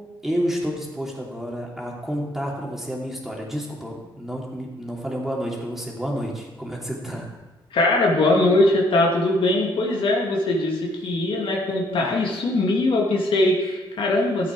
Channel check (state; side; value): normal; both; correlation 0.66